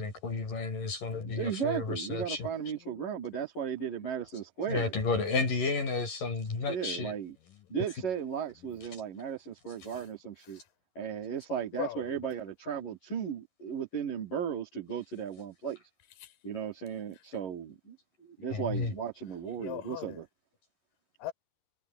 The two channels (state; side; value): late; right; 11 ms